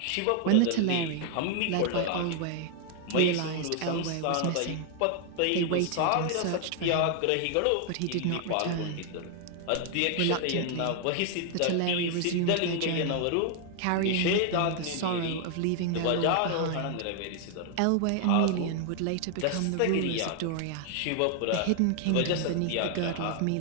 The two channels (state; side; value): different; both; correlation 0.00